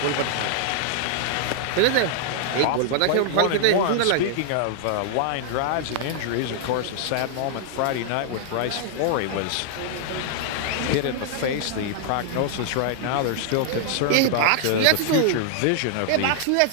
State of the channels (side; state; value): both; different; correlation -0.01